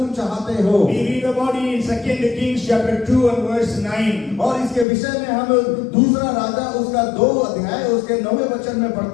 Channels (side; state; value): right; drops out; at 4.9 s